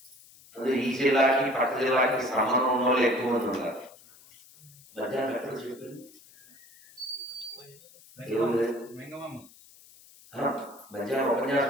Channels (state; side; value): noise; left; hiss, 24 dB below the sound